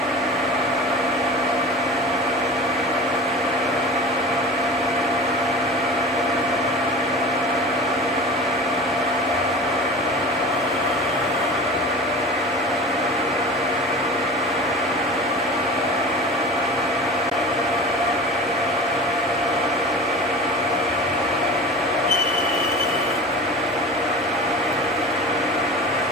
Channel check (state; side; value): normal; both; correlation 0.36